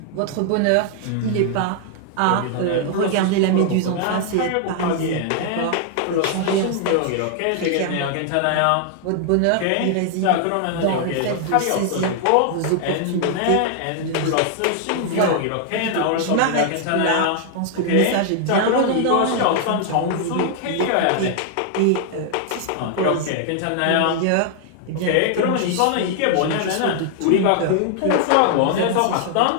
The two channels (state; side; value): different; both; correlation 0.00